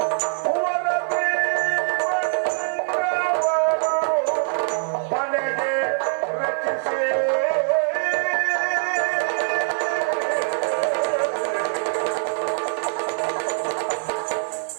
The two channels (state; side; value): silent; left; 62 dB below the other